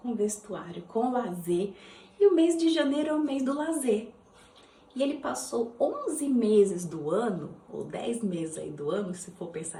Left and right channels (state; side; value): identical; both; correlation 1.00